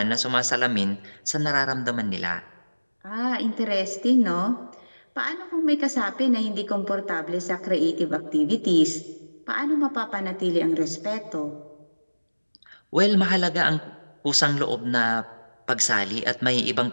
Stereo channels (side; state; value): both; inverted; correlation -1.00